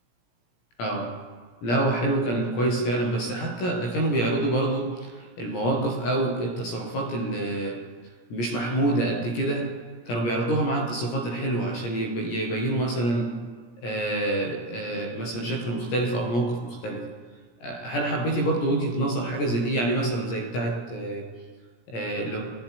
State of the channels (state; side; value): late; right; 17 ms